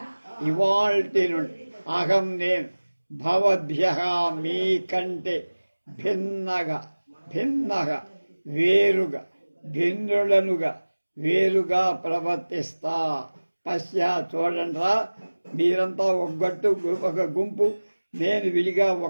ఇవాల్టి నుండి, అహం నేను భవద్భ్యః మీ కంటే భిన్నగా వేరుగా ప్రవర్తిస్తా. పశ్య చూడండిరా, మీరంతా ఒక గుంపు, నేను విడిగా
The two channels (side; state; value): both; inverted; correlation -1.00